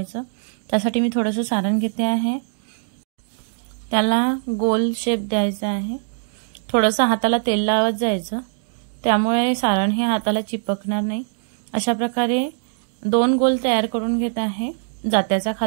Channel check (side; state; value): left; silent; digital silence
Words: त्यासाठी मी थोडंसं सारण घेते आहे, त्याला गोल शेप द्यायचा आहे। थोडंसं हाताला तेल लावत जायचं, त्यामुळे सारण हे हाताला चिपकणार नाही। अशा प्रकारे दोन गोल तयार करून घेत आहे, जात्याचा